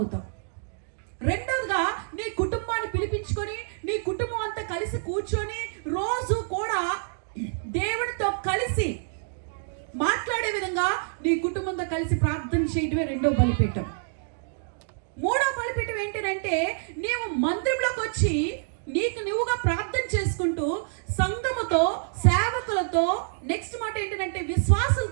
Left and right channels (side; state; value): left; silent; digital silence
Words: రెండోదిగా నీ కుటుంబాన్ని పిలిపించుకొని నీ కుటుంబం అంతా కలిసి కూర్చొని రోజు కూడా దేవుడితో కలిసి మాట్లాడే విధంగా నీ కుటుంబంతో కలిసి ప్రార్థన చేయడమే రెండో బలిపీఠం. మూడో బలిపీఠం ఏంటంటే, నీవు మందిరంలోకి వచ్చి నీకు నువ్వుగా ప్రార్థన చేసుకుంటూ సంఘముతో, సేవకులతో, నెక్స్ట్ మాట ఏంటంటే